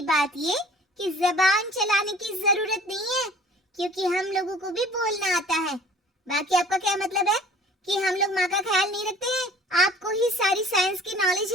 बात ये कि जबान चलाने की जरूरत नहीं है, क्योंकि हम लोगों को भी बोलना आता है। बाकी आपका क्या मतलब है कि हम लोग माँ का ख्याल नहीं रखते हैं? आपको ही सारी साइंस की नॉलेज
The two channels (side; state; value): both; normal; correlation 0.50